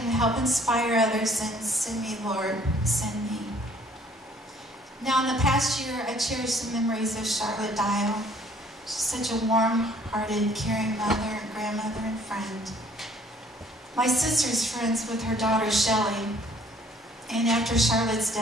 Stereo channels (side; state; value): both; normal; correlation 0.59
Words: help inspire others, then send me, Lord, send me. Now, in the past year, I cherish the memories of Charlotte Dial. She's such a warm-hearted, caring mother and grandmother and friend. My sister's friends with her daughter, Shelley. And after Charlotte's